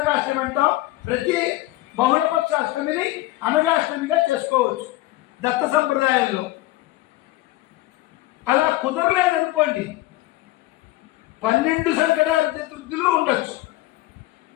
అంటాం. ప్రతి బహుళపక్ష అష్టమిని అనఘాష్టమిగా చేసుకోవచ్చు దత్త సంప్రదాయంలో. అలా కుదరలేదనుకోండి 12 సంకటహార చతుర్థులు ఉండొచ్చు,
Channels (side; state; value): right; quieter; 17.8 dB